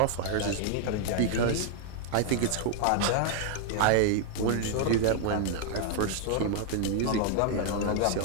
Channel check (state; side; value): different; both; correlation 0.00